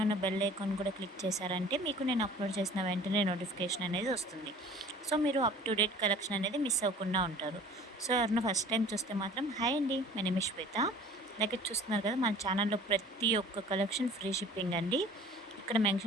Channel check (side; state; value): both; normal; correlation 0.47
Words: ఉన్న బెల్ ఐకాన్ కూడా క్లిక్ చేశారంటే మీకు నేను అప్లోడ్ చేసిన వెంటనే నోటిఫికేషన్ అనేది వస్తుంది. సో మీరు అప్ టు డేట్ కలెక్షన్ అనేది మిస్ అవ్వకుండా ఉంటారు. సో ఎవరైనా ఫస్ట్ టైం చూస్తే మాత్రం హాయ్ అండి, మై నేమ్ ఇస్ శ్వేత. అలాగే చూస్తున్నారు కదా, మన ఛానల్లో ప్రతి ఒక్క కలెక్షన్ ఫ్రీ షిప్పింగ్ అండి. ఇక్కడ